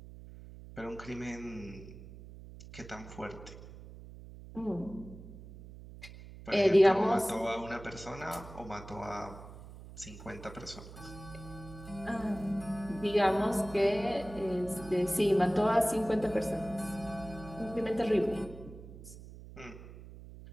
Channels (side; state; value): right; noise; hum, 15 dB below the sound